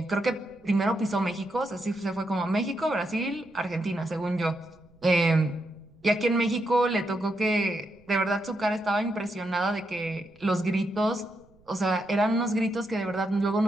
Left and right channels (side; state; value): right; noise; rumble, 30 dB below the sound